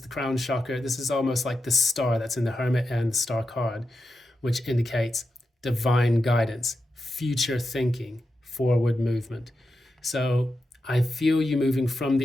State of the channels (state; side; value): normal; both; correlation 0.88